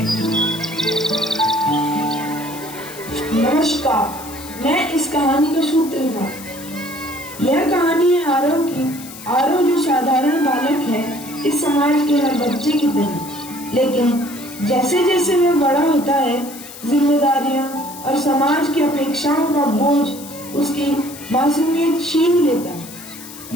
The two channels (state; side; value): noise; left; hiss, 15 dB below the sound